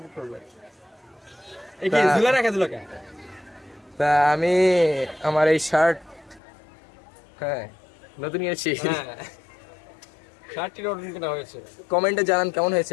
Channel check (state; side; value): drops out; right; at 6.4 s